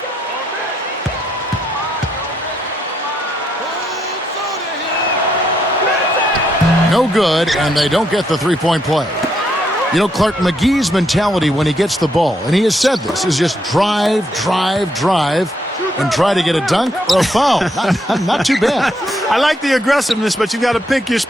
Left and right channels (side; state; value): both; normal; correlation 0.76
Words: No good, and they don't get the three-point play. You know, Clark, McGee's mentality when he gets the ball, and he has said this, is just drive, drive, drive, and try to get a dunk or a foul. Not too bad. I like the aggressiveness, but you've got to pick your